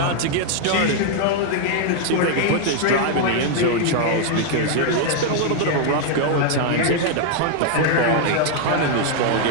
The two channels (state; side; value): different; both; correlation 0.00